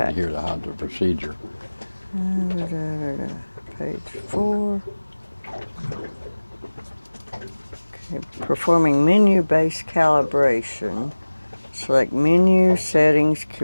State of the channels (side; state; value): both; inverted; correlation -1.00